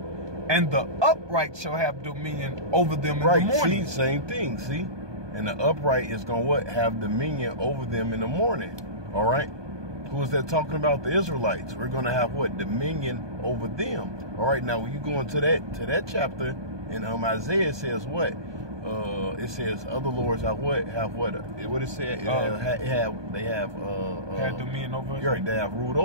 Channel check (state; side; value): late; left; 1.2 ms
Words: and the upright shall have dominion over them in the morning. See, same thing. See, and the upright is gonna what? Have dominion over them in the morning. All right. Who is that talking about? The Israelites. We're going to have what? Dominion over them. All right, now when you go into that chapter in Isaiah, it says what? It says other lords have what? Have what? What it said? They have dominion over us. Right, they have ruled